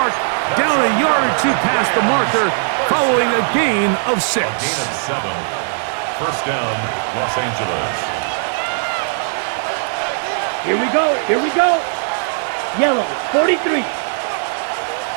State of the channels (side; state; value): left; silent; digital silence